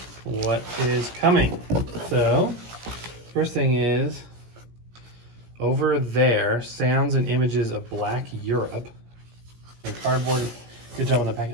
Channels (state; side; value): late; left; 17 ms